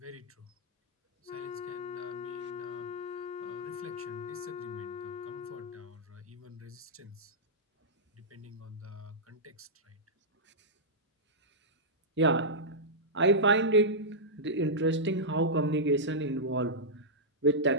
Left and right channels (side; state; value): both; normal; correlation -0.11